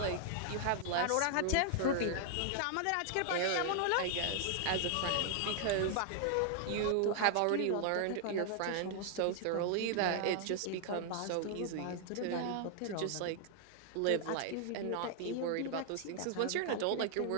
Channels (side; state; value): both; different; correlation 0.00